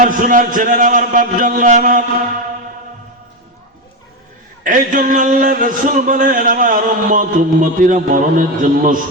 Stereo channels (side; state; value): both; normal; correlation 0.12